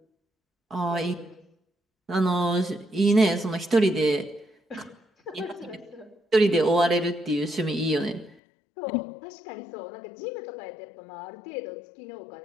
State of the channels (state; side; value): drops out; right; at 8.4 s